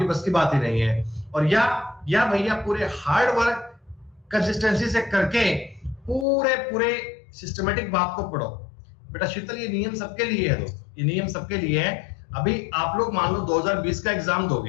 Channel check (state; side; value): drops out; right; at 6.2 s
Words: बस की बात ही नहीं है। और या भैया पूरे हार्ड वर्क कंसिस्टेंसी से करके पूरे सिस्टमेटिक बात को पढ़ो बेटा। शीतल ये नियम सबके लिए है दोस्तों, ये नियम सबके लिए है। अभी आप लोग मान लो 2020 का एग्जाम